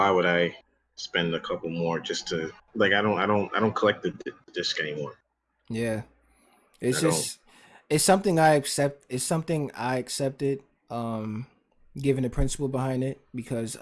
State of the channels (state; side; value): identical; both; correlation 1.00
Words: would I spend a couple more just to like? I don't collect the disc anymore. Yeah, it's I don't. just it's something I accept. It's something I accepted. Um, Given the principle behind it, because